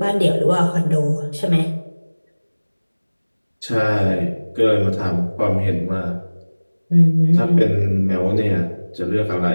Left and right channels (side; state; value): both; inverted; correlation -1.00